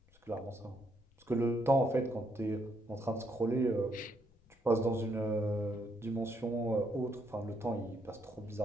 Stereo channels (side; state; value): left; noise; rumble, 29 dB below the sound